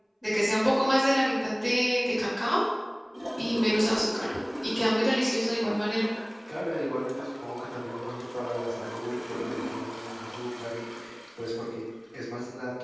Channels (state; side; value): identical; both; correlation 1.00